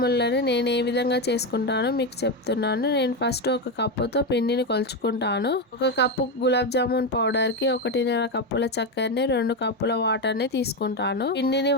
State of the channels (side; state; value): both; normal; correlation 0.11